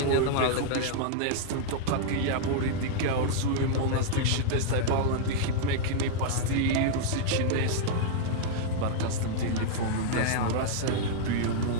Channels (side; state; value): both; different; correlation -0.01